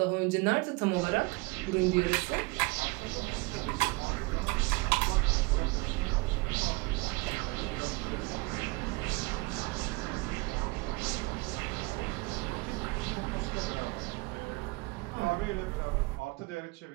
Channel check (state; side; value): quieter; left; 25.9 dB